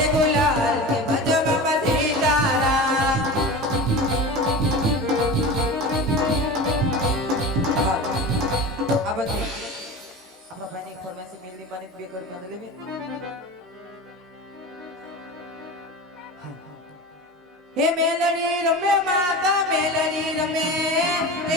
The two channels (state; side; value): normal; both; correlation 0.30